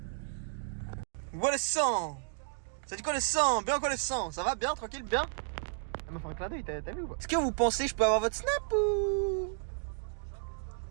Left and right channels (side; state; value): left; silent; digital silence